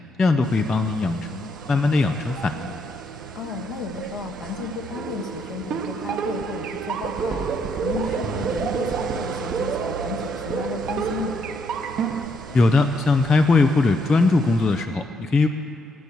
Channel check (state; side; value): normal; both; correlation 0.75